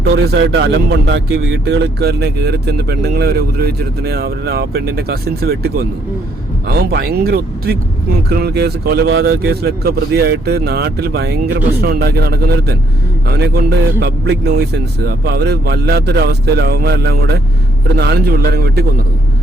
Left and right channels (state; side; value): normal; both; correlation 0.71